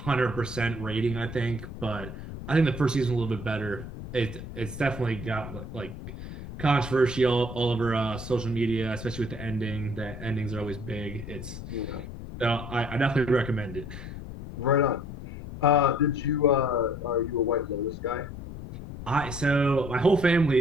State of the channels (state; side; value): noise; left; rumble, 10 dB below the sound